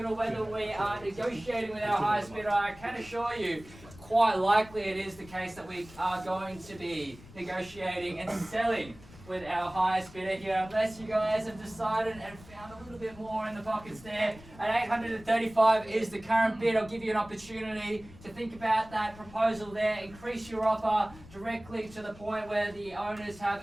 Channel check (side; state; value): left; noise; rumble, 20 dB below the sound